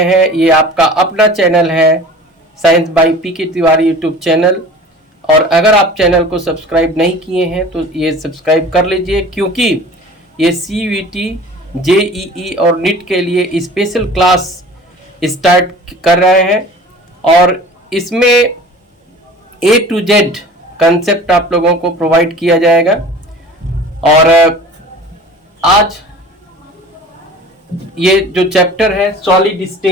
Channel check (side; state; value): both; normal; correlation 0.42